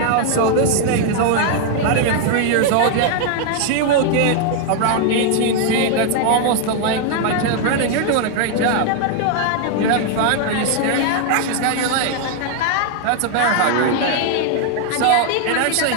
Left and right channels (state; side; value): different; both; correlation 0.00